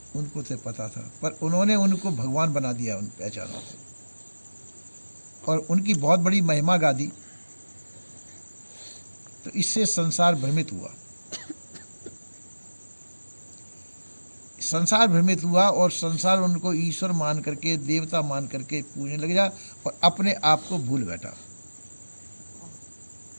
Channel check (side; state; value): both; inverted; correlation -1.00